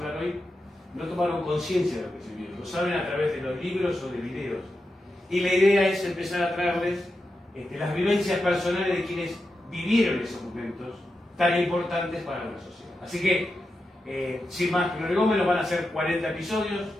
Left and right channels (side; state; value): both; normal; correlation 0.89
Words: hoy, no tomaron conciencia de lo que se vio, lo saben a través de los libros o de videos. Y la idea es empezar a traerles las vivencias personales de quienes vivieron esos momentos tan importantes para la sociedad. Así que, sin más prolegómenos, van a ser 40 episodios